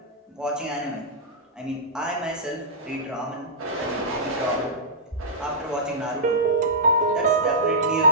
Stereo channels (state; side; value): normal; both; correlation -0.13